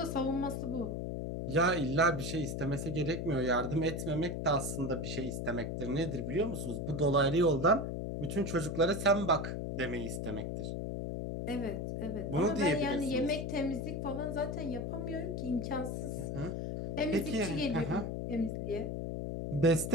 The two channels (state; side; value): noise; left; hum, 3 dB below the sound